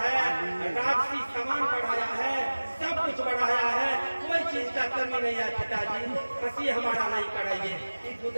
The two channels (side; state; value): both; inverted; correlation -1.00